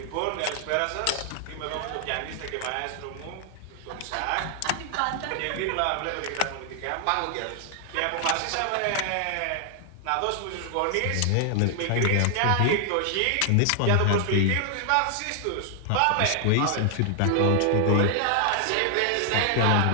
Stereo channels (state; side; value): different; both; correlation 0.00